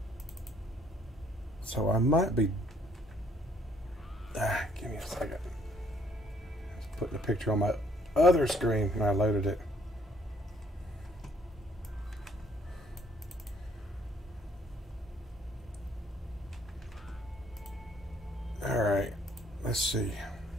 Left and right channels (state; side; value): normal; both; correlation 0.64